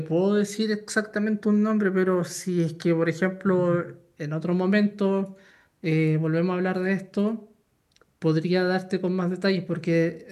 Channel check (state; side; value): identical; both; correlation 1.00